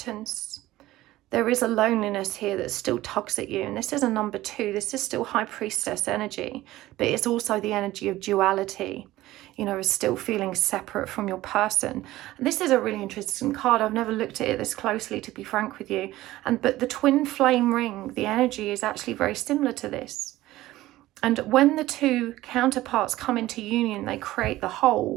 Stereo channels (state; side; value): quieter; left; 16.4 dB